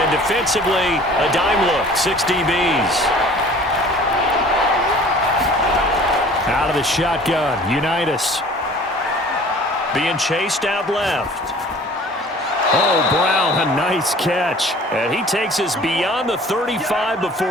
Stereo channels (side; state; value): both; normal; correlation 0.48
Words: defensively, a dime look, 6 DBs. Out of the shotgun, Unitas. Being chased out left. Oh, Brown, a nice catch. And he takes us beyond the 35